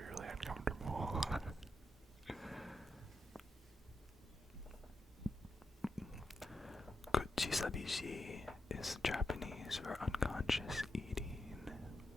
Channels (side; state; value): both; normal; correlation 0.86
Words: really uncomfortable. Kuchisabishi is Japanese for unconscious eating.